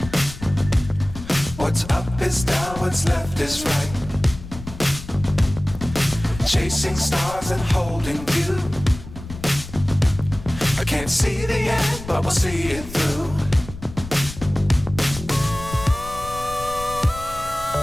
What's up is down, what's left is right. Chasing stars and holding you. I can't see the end, but we'll see it through.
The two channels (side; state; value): left; noise; rumble, 13 dB below the sound